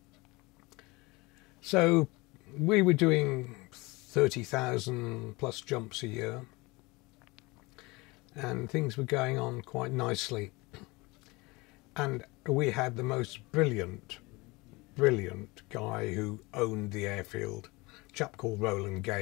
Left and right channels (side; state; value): right; quieter; 24.0 dB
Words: So we were doing 30,000 plus jumps a year, and things were going on quite nicely. And we had the most brilliant guy who owned the airfield, a chap called Roland